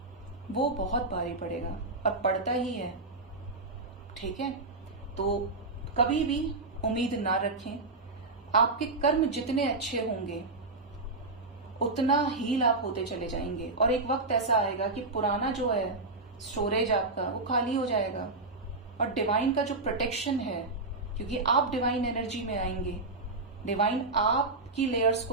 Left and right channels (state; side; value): quieter; left; 3.4 dB